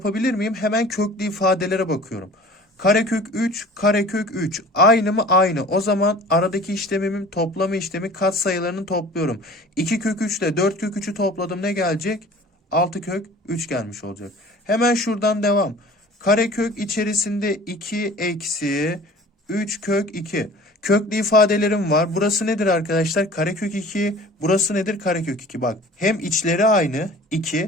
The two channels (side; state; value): both; normal; correlation 0.44